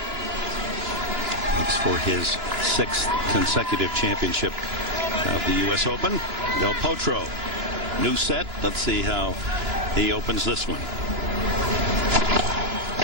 Looks for his 6th consecutive championship of the U.S. Open. Del Potro, new set. Let's see how he opens this one.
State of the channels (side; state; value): left; late; 2.9 ms